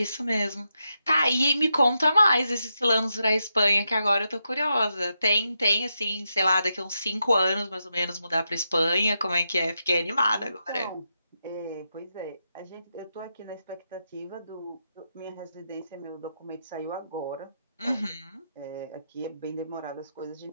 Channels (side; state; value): both; inverted; correlation -0.85